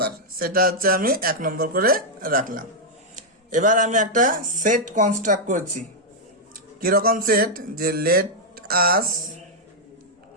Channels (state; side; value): normal; both; correlation -0.03